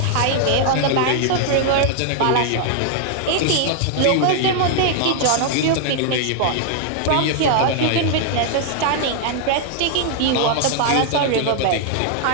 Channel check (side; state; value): both; different; correlation 0.00